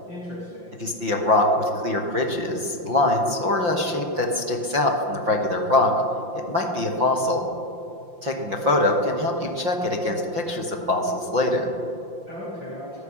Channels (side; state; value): left; late; 5.8 ms